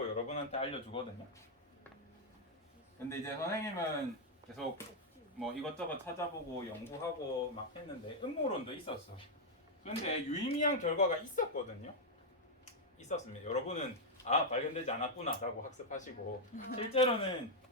여러분한테 알려주거든요. 근데 이제 선생님은 계속 뭐 이것저것 찾아보고 연구하고 막 했는데 음모론도 있었어. 근데 유의미한 결과가 있었거든요. 있었습니다. 여러분은 발견되지 않았구나 라고 학습하시고 실제로는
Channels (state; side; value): normal; both; correlation -0.01